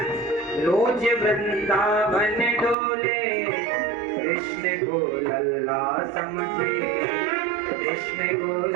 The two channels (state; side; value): drops out; left; at 2.8 s